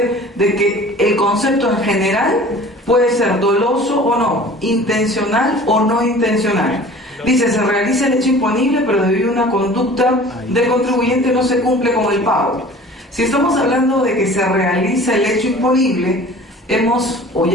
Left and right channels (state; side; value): normal; both; correlation 0.44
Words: de que el concepto en general puede ser doloso o no, intencional o no intencional. Dice, se realiza el hecho imponible, pero debido a una conducta del contribuyente no se cumple con el pago. Si estamos hablando de que se realiza el hecho imponible,